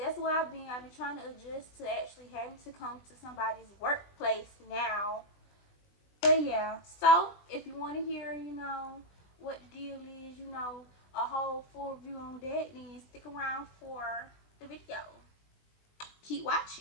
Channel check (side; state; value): right; late; 20 ms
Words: why I've been trying to adjust to actually having to come to somebody's workplace now. But yeah, so if you want to hear, you know, what the deal is, you know, a whole full review on that, then stick around for the video. Keep